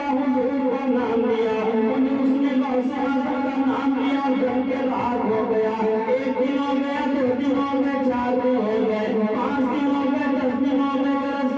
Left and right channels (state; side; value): identical; both; correlation 1.00